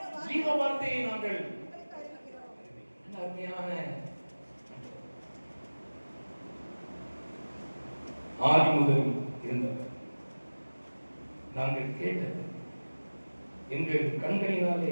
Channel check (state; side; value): inverted; both; correlation -1.00